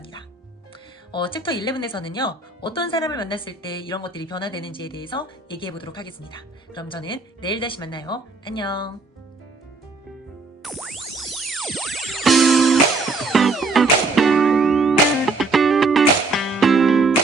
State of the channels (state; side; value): quieter; left; 3.7 dB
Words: 챕터 11에서는요, 어떤 사람을 만났을 때 이런 것들이 변화되는지에 대해서 얘기해 보도록 하겠습니다. 그럼 저는 내일 다시 만나요. 안녕.